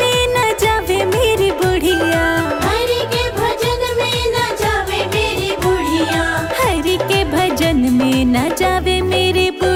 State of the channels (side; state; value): both; identical; correlation 1.00